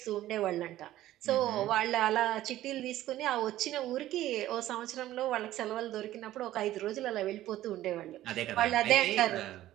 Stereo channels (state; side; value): quieter; left; 14.3 dB